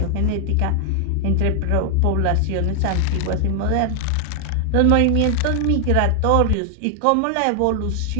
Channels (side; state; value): both; different; correlation 0.00